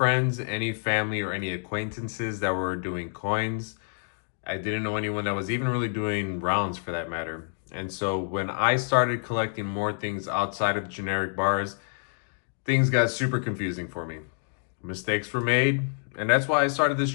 any family, or any acquaintances that were doing coins. I didn't know anyone that was even really doing rounds for that matter. And so when I started collecting more things outside of generic bars, things got super confusing for me. Mistakes were made, and that's why I started this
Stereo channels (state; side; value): silent; right; digital silence